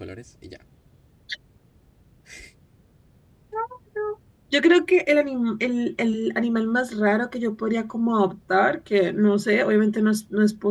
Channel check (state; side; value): identical; both; correlation 1.00